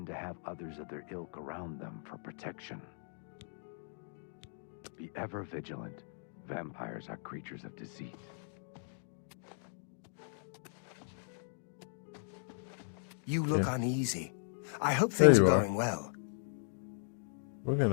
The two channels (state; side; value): silent; right; digital silence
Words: to have others of their ilk around them for protection. Be ever vigilant. Vampires are creatures of deceit. You look uneasy. I hope things are you are. going well. We're